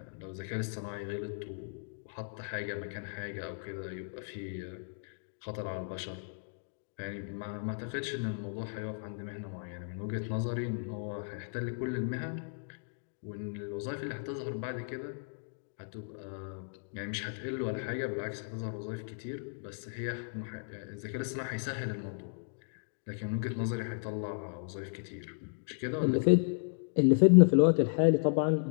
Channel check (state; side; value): silent; right; digital silence